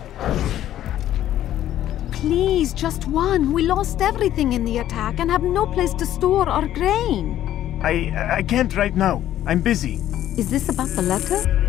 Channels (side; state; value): right; quieter; 12.2 dB